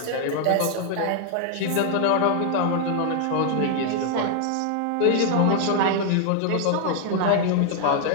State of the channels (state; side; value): different; both; correlation 0.00